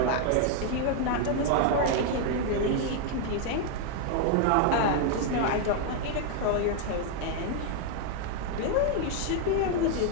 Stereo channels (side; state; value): both; different; correlation 0.00